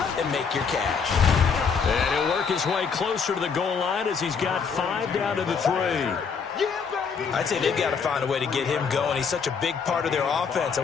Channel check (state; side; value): quieter; right; 5.9 dB